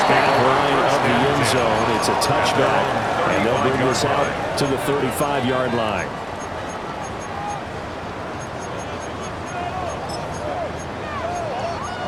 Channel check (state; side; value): identical; both; correlation 1.00